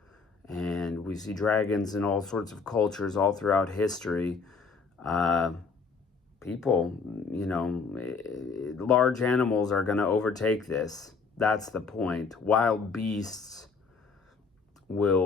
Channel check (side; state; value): right; quieter; 4.9 dB